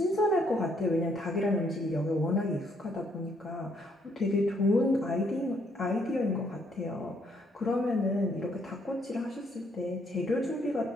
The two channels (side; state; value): both; normal; correlation 0.70